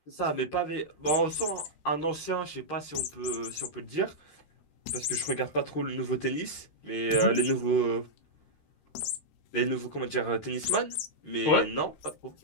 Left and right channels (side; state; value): right; late; 13 ms